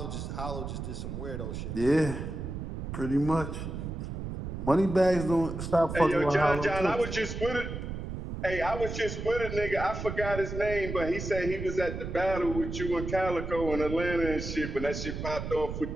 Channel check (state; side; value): noise; right; rumble, 6 dB below the sound